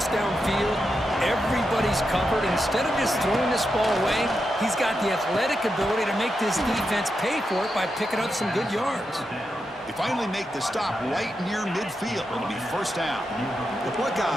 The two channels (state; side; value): normal; both; correlation 0.86